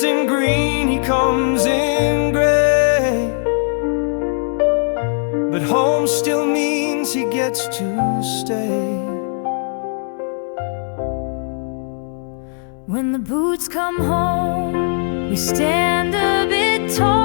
in green, he comes in gray, but home still means he gets to stay. When the boots come home, we stand a bit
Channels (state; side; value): silent; right; 67 dB below the other